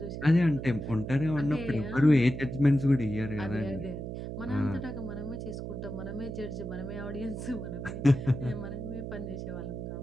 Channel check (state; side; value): noise; right; hum, 6 dB below the sound